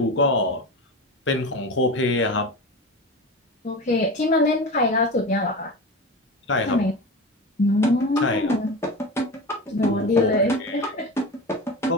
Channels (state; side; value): normal; both; correlation 0.27